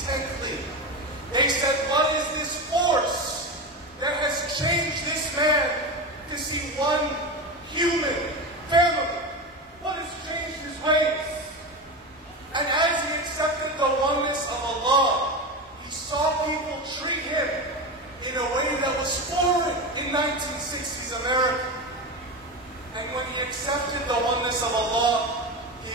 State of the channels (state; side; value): normal; both; correlation 0.21